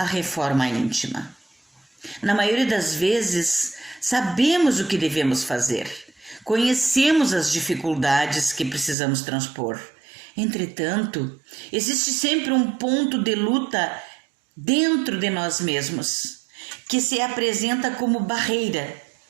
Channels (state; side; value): drops out; left; at 9.0 s